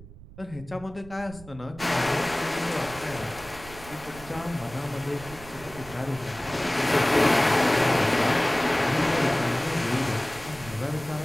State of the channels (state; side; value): noise; right; rumble, 18 dB below the sound